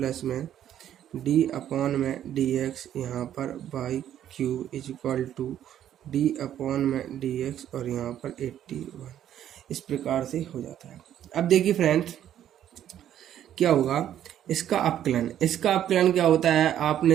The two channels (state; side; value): quieter; left; 10.9 dB